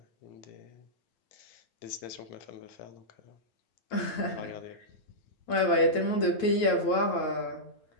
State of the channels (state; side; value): late; right; 9.2 ms